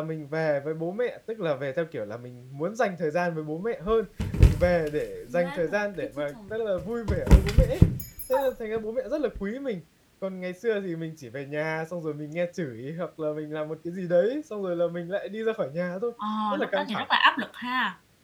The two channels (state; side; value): identical; both; correlation 1.00